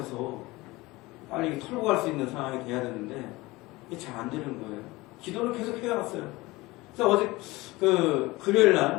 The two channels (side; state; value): right; quieter; 21.0 dB